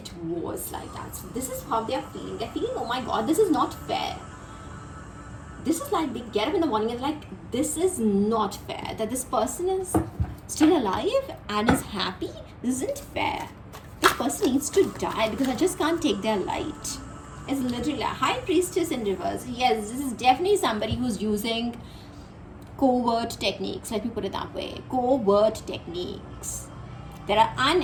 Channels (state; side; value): identical; both; correlation 1.00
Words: was like that. So this is how they're feeling. They're feeling, oh my god, this is not fair. This is like they get up in the morning and like, this is not fair. That this person is still alive and is happy. This isn't fair. This person needs to die because I just can't take their light. It's literally a high priestess in reverse. Yes, this is definitely somebody who's using covert techniques. Let me put it that way. Covert techniques that are